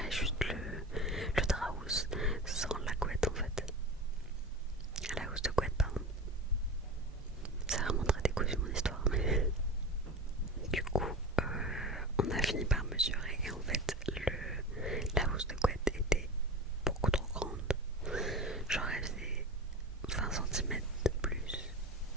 juste le drap housse sans la couette en fait. La housse de couette, pardon. C'est vraiment très décousu mon histoire, mais du coup, on a fini par mesurer et en fait, la housse de couette était beaucoup trop grande. Genre, elle faisait 20 cm de plus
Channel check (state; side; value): normal; both; correlation 0.30